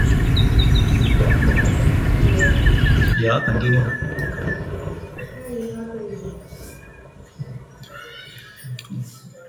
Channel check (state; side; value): identical; both; correlation 1.00